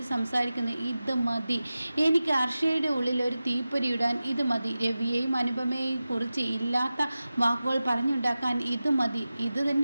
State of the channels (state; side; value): inverted; both; correlation -0.95